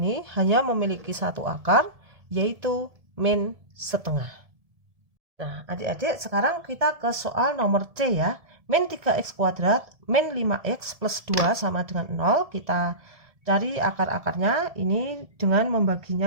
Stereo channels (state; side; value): late; left; 1.7 ms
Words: hanya memiliki satu akar, yaitu min setengah. Nah, adik-adik, sekarang kita ke soal nomor C ya. Min 3x kuadrat min 5x plus 2 sama dengan 0. Kita cari akar-akarnya. Ini dengan